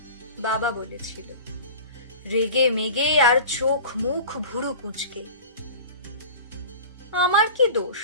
বাবা বলেছিল, রেগে মেগে আর চোখ মুখ ভুরু কুঁচকে। আমার কি দোষ?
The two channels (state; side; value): inverted; both; correlation -0.37